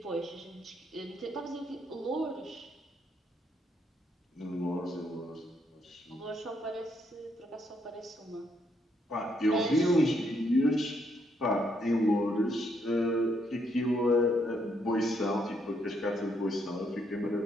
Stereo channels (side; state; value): both; normal; correlation 0.74